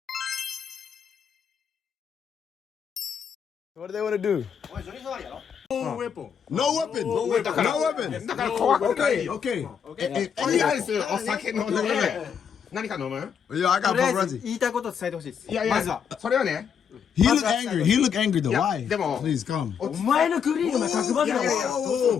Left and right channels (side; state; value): right; quieter; 7.4 dB